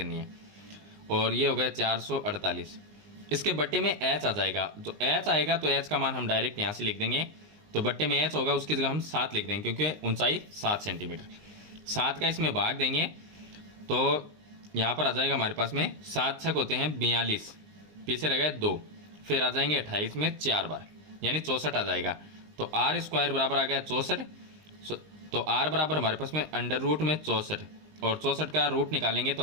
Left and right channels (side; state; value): left; late; 19 ms